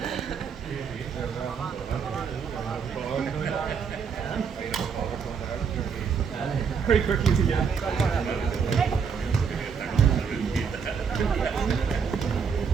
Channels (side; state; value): left; quieter; 6.3 dB